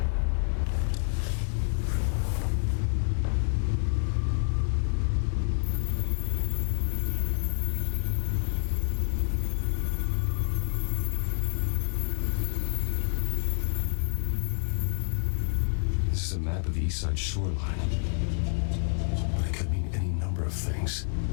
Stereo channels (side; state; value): right; silent; 59 dB below the other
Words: This is a map of the East Side shoreline. It could mean any number of things.